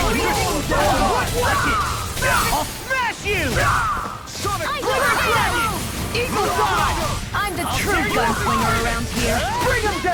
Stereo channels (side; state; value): both; identical; correlation 1.00